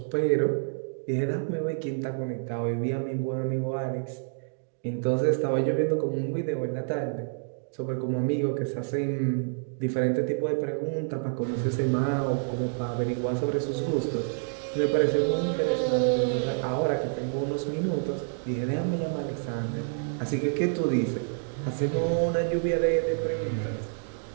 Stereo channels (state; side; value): silent; left; digital silence